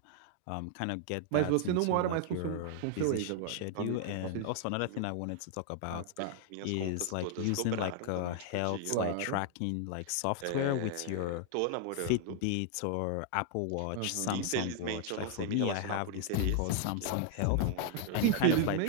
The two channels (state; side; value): different; both; correlation 0.00